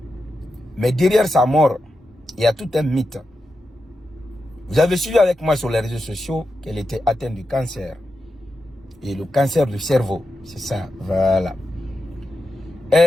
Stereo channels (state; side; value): normal; both; correlation 0.89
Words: Mais derrière sa mort, il y a tout un mythe. Vous avez suivi avec moi sur les réseaux sociaux qu'elle était atteinte du cancer. Et le cancer du cerveau, c'est ça, voilà.